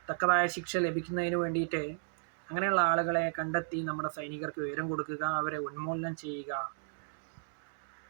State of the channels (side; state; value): left; silent; digital silence